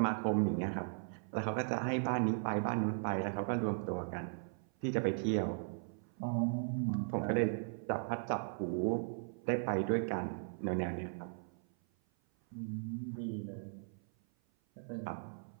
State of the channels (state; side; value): silent; left; 53 dB below the other